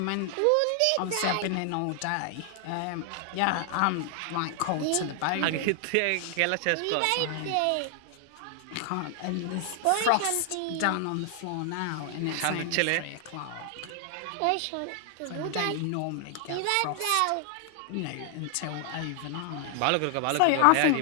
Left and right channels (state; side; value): different; both; correlation 0.00